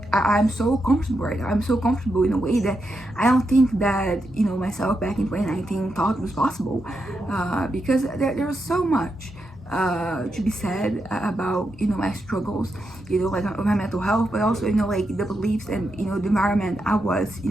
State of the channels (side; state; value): both; normal; correlation 0.85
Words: I'm so comfortable right now. I'm so comfortable in a way that I don't think that myself back in 2019 thought was possible, because there's so much to be said about my struggles, like my mental health, but also like the beliefs and the environment I was